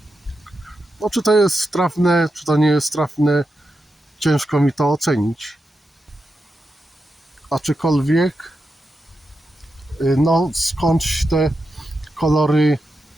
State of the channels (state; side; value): normal; both; correlation 0.88